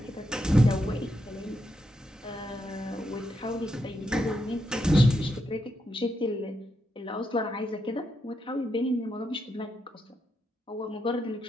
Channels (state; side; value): normal; both; correlation 0.82